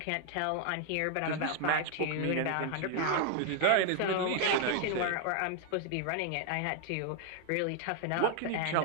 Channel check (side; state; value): both; different; correlation 0.00